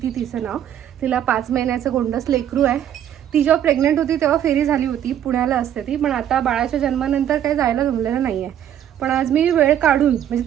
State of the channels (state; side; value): quieter; left; 10.4 dB